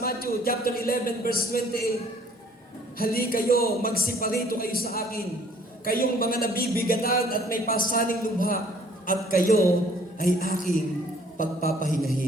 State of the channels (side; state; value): both; normal; correlation 0.58